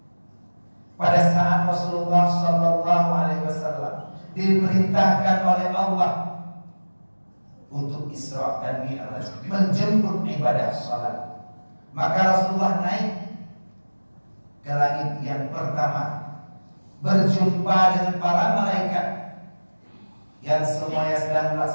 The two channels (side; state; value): both; inverted; correlation -1.00